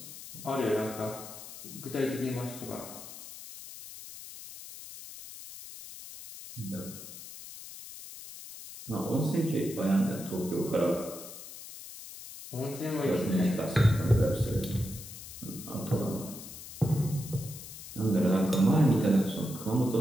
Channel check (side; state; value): left; noise; hiss, 13 dB below the sound